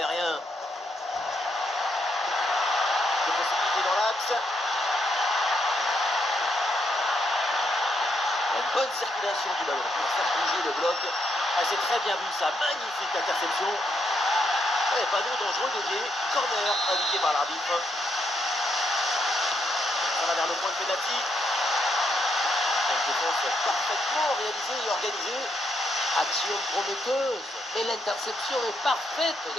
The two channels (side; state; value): both; normal; correlation 0.78